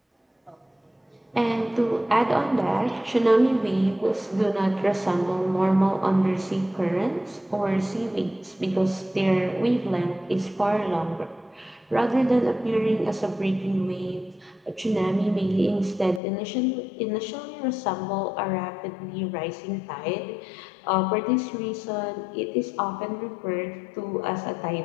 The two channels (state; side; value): drops out; right; at 16.2 s